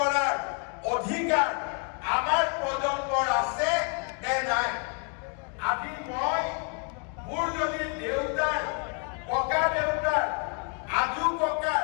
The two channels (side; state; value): right; quieter; 37.6 dB